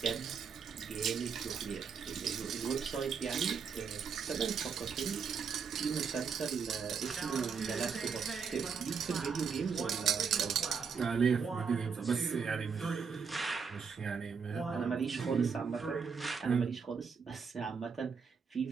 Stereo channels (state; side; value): quieter; left; 6.0 dB